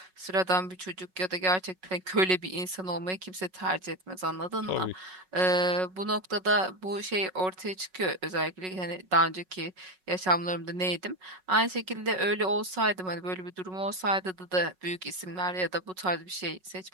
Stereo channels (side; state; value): left; late; 5.4 ms